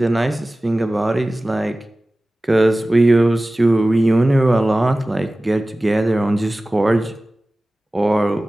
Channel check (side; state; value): both; normal; correlation 0.97